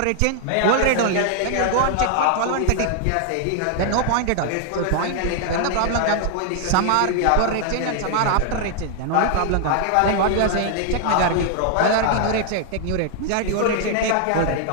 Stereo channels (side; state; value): both; different; correlation 0.00